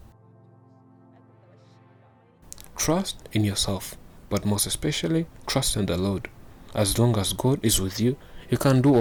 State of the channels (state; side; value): identical; both; correlation 1.00